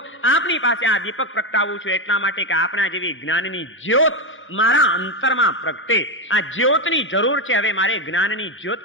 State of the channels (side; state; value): both; normal; correlation 0.11